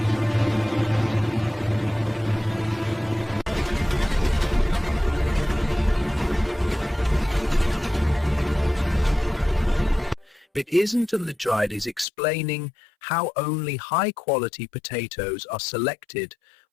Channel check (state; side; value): drops out; right; at 12.1 s